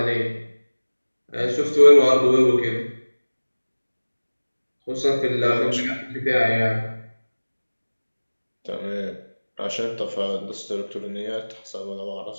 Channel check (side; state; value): both; inverted; correlation -1.00